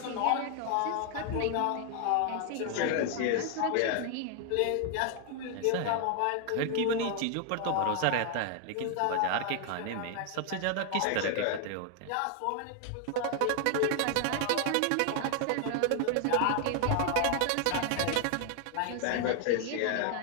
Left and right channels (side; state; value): both; different; correlation 0.00